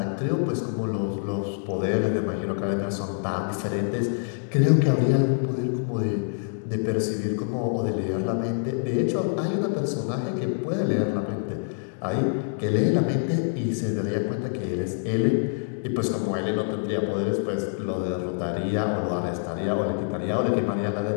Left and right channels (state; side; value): silent; right; digital silence